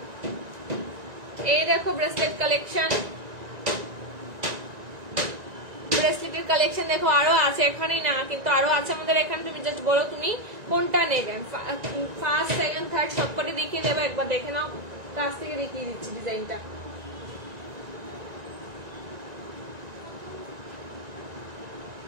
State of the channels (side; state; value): left; late; 1.9 ms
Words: এই দেখো ব্রেসলেট কালেকশন, ব্রেসলেটের কালেকশন দেখো, আরো আছে, এখানেই না কিন্তু আরো আছে আমাদের এখানে। তুমি জাস্ট বলো তুমি কোনটা নেবেন, ফার্স্ট সেকেন্ড থার্ড সবকটি দেখিয়ে দেবো, একবার দেখে নাও, কাছ থেকে দেখিয়ে দিচ্ছি ডিজাইনটা।